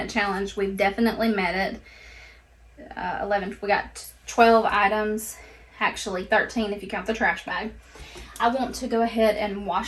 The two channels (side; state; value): both; identical; correlation 1.00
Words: challenge, we've definitely met it. 11, we got 12 items. Actually 13 if you count the trash bag. I want to go ahead and